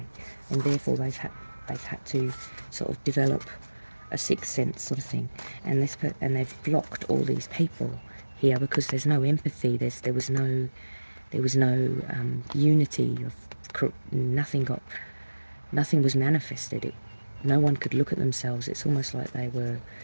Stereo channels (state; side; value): inverted; both; correlation -1.00